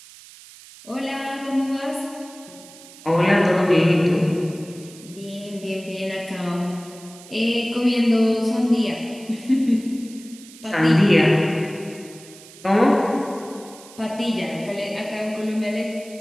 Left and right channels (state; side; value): noise; right; hiss, 20 dB below the sound